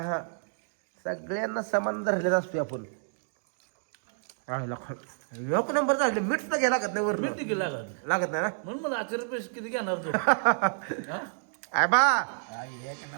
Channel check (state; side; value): silent; left; digital silence